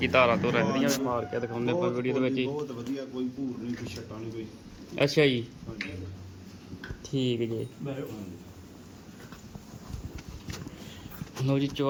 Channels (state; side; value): identical; both; correlation 1.00